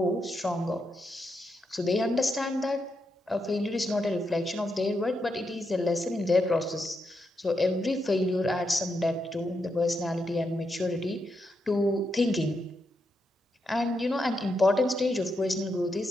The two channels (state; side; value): normal; both; correlation 0.83